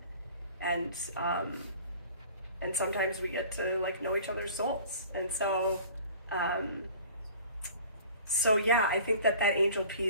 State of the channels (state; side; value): inverted; both; correlation -0.46